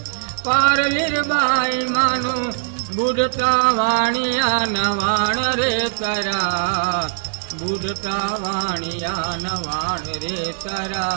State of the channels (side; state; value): left; silent; 62 dB below the other